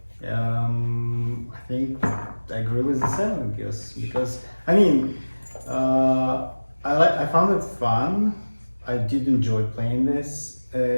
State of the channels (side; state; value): both; inverted; correlation -1.00